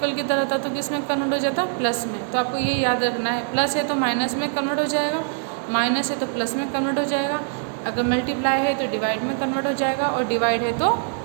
किधर होता तो किस में कन्वर्ट हो जाता, प्लस में। तो आपको ये याद रखना है, प्लस है तो माइनस में कन्वर्ट हो जाएगा, माइनस है तो प्लस में कन्वर्ट हो जाएगा। अगर मल्टीप्लाई है तो डिवाइड में कन्वर्ट हो जाएगा, और डिवाइड है तो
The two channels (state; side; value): silent; left; digital silence